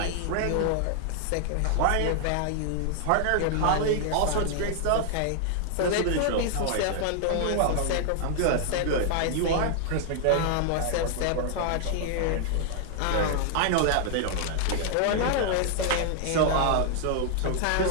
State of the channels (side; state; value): both; different; correlation 0.00